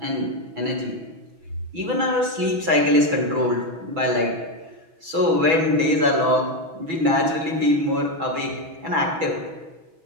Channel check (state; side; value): late; left; 6.1 ms